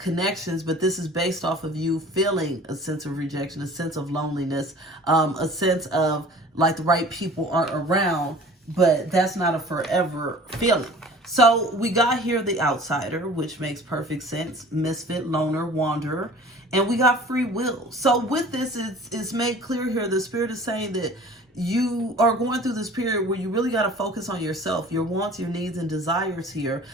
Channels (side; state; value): both; normal; correlation 0.45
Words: but this is based off of you feeling a sense of rejection, a sense of loneliness, a sense of like the right people aren't around, but that's not a forever feeling. So we got here the outsider, which makes perfect sense. Misfit, loner, wanderer. And we got free will. So with this, it's made clear here, the Spirit is saying that you are going through this period where you really got to focus on yourself, your wants, your needs, and desires here,